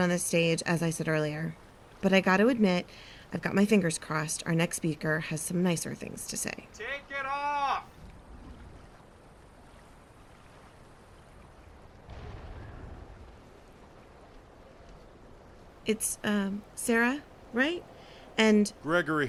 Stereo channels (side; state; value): both; identical; correlation 1.00